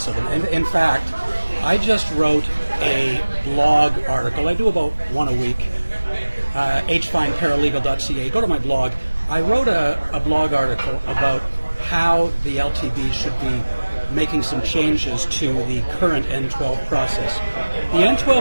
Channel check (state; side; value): inverted; both; correlation -1.00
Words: of them. In fact, I just wrote a blog article. I do about one a week. hfineparalegal.ca. Go to my blog. I wrote a blog article about how the LTB should be making some changes to the current N12 process. The